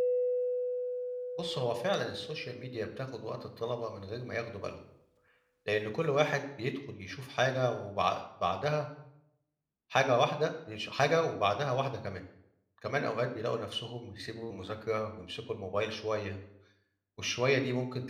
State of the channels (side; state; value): both; identical; correlation 1.00